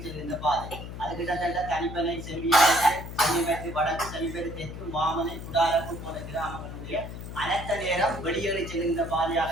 பாதை. அது கிட்டத்தட்ட தனிப்பனை செம்மியத்து வடக்கு செமிப்பேறு தெற்கு மாமனை குடாரப்பு போன்ற கிராமங்களுடைய அனைத்த நேரம் வெளியேறி செல்கின்ற பாதையாக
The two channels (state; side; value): noise; left; hum, 9 dB below the sound